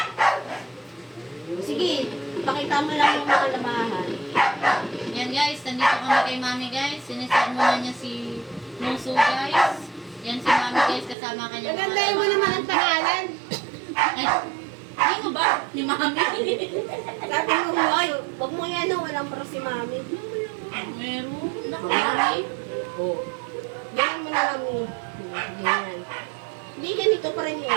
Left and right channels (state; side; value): drops out; left; at 11.2 s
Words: Sige, pakita mo lang yung mga lamahan. Yan guys, nandito kami kay Mami guys. Siniset muna niya si Muso guys. Yan si Mami guys, kasama kanya. Nagandahin mo naman ang pangalan. Ay, hindi mo ba? Ni Mami. Sabi mo mo. Ay, wag mo yan, no? Walang para si Mami. Meron. Naku, Mami. Oo. Ganyan mo na lang mo. Ganyan. Hindi, ganito pa rin